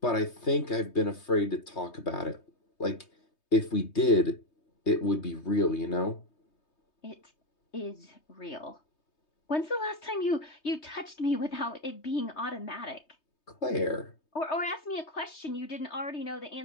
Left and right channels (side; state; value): right; late; 3.2 ms